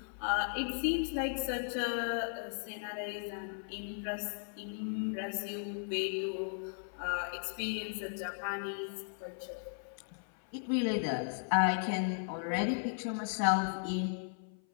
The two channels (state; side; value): silent; right; 54 dB below the other